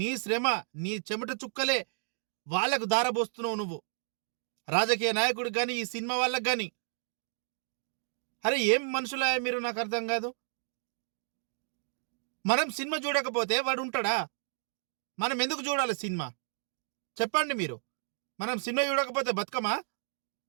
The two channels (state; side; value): silent; left; digital silence